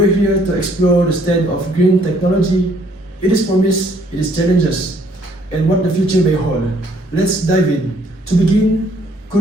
here to explore the state of green technology, its promise, its challenges, and what the future may hold. Let's dive in. To begin,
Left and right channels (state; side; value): normal; both; correlation 0.64